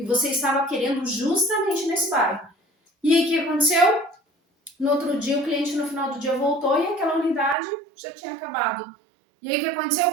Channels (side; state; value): left; drops out; at 7.6 s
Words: você estava querendo justamente nesse bairro. E aí o que aconteceu? No outro dia, o cliente no final do dia voltou e aquela unidade já tinha acabado. E aí o que aconteceu?